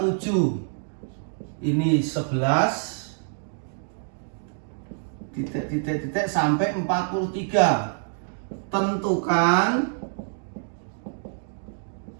7, ini 11, titik sampai 43. Tentukan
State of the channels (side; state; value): left; silent; digital silence